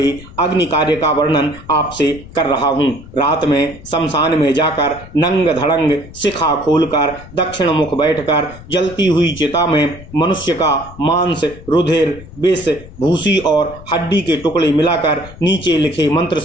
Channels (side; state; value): left; noise; rumble, 18 dB below the sound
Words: अग्नि कार्य का वर्णन आपसे कर रहा हूँ। रात में शमशान में जाकर नंग धड़ंग शिखा खोलकर दक्षिण मुख बैठकर जलती हुई चिता में मनुष्य का मांस, रुधिर, विष, भूसी और हड्डी के टुकड़े मिलाकर नीचे लिखे मंत्र